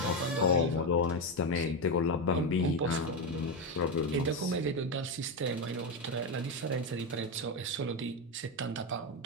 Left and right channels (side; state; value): both; normal; correlation 0.10